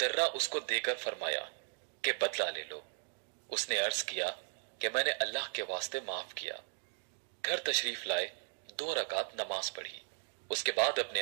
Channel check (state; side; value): silent; left; 53 dB below the other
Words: उसको देकर फरमाया कि बदला ले लो। उसने अर्ज किया कि मैंने अल्लाह के वास्ते माफ किया। घर तशरीफ लाए, 2 रकात नमाज पढ़ी। उसके बाद अपने